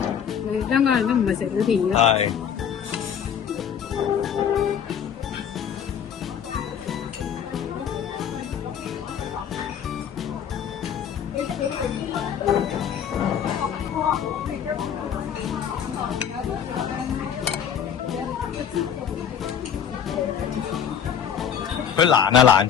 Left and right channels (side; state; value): right; quieter; 8.4 dB